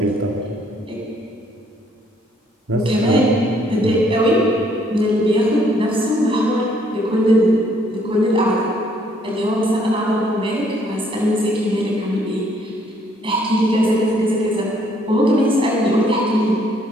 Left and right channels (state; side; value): normal; both; correlation 0.66